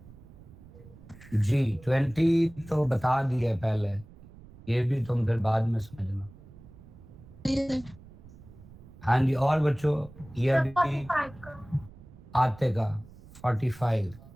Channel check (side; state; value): right; noise; rumble, 20 dB below the sound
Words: जी 20 तो बता दिए पहले, ये भी तुम फिर बाद में समझना। हाँ जी, और बच्चों ये अभी 45 का। आते का 45।